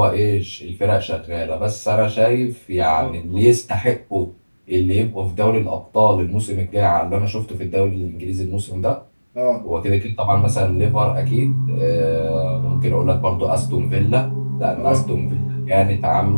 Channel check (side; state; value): both; inverted; correlation -1.00